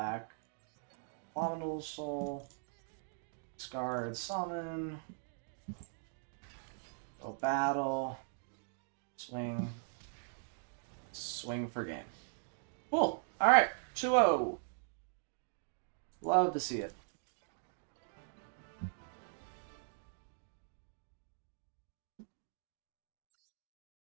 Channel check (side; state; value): left; silent; digital silence